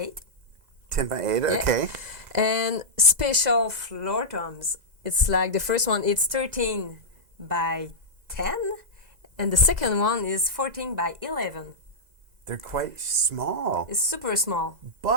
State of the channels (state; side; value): late; left; 2.0 ms